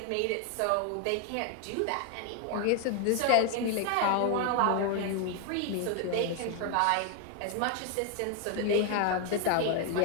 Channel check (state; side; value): different; both; correlation 0.00